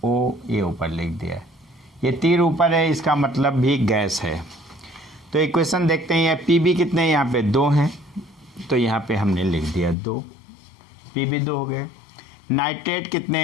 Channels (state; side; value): drops out; right; at 10.0 s